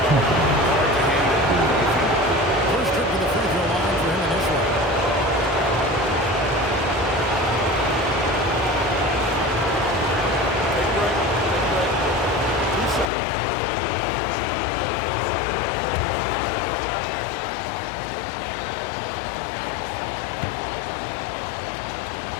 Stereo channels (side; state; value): right; drops out; at 13.1 s